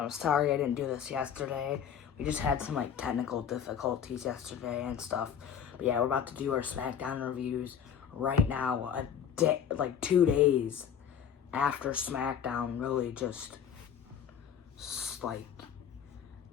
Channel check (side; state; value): right; quieter; 8.4 dB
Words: sorry I didn't do this yesterday. We just had some technical difficulties yesterday and stuff. But yeah, we're about to do our SmackDown reviews right now. 2 days after SmackDown really just